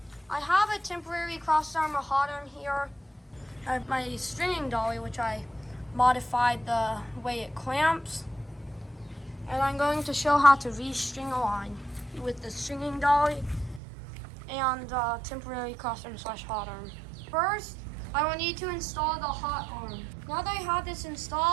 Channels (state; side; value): drops out; left; at 13.8 s